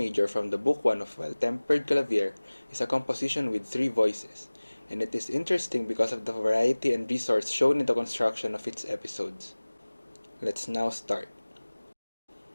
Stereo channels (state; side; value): inverted; both; correlation -1.00